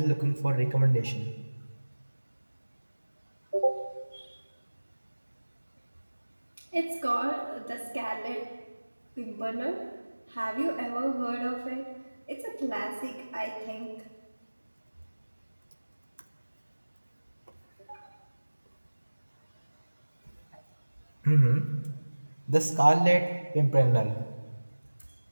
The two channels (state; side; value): inverted; both; correlation -1.00